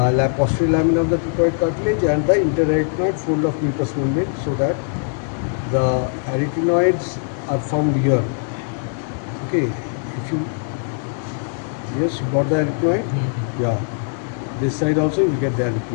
posterior lamina of the cricoid cartilage and the interarytenoid fold of mucous membrane, so that the arytenoids are found here. Okay, if you, yes, you got the arytenoid? Yeah. This side also you get the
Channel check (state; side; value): silent; right; 61 dB below the other